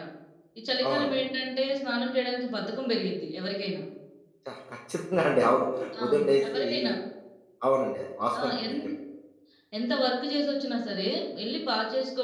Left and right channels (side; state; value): both; identical; correlation 1.00